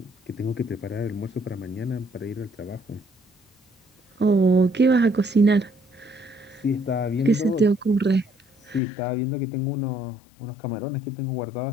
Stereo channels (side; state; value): right; drops out; at 8.8 s